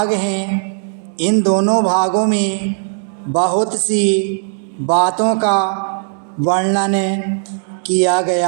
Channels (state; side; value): silent; left; digital silence